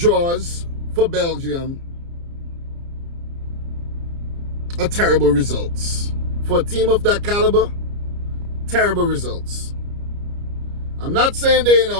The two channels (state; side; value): late; left; 29 ms